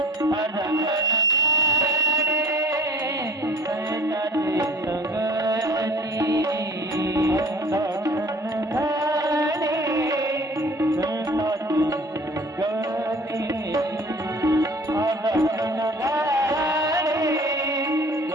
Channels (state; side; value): normal; both; correlation 0.48